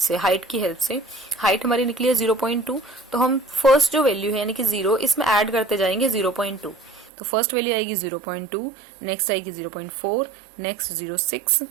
हाइट की हेल्प से। हाइट हमारी निकली है 0.2, तो हम फर्स्ट जो वैल्यू है यानी कि 0, इसमें ऐड करते जाएंगे 0.2। तो फर्स्ट वैल्यू आएगी 0.2, नेक्स्ट आएगी 0.4, नेक्स्ट 0.6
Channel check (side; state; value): left; drops out; at 7.1 s